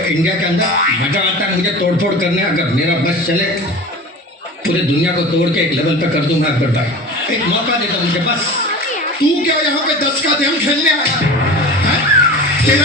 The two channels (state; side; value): normal; both; correlation 0.34